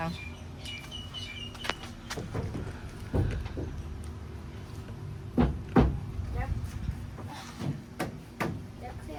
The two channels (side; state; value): both; identical; correlation 1.00